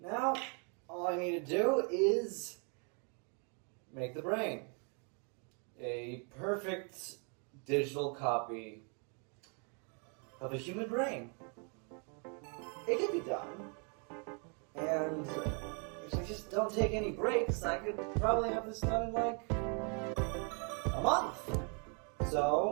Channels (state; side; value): quieter; left; 38.1 dB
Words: all I need to do is make the brain. A perfect digital copy of a human brain. It can be done. And if I just don't take any breaks, I could probably have this done in like a month.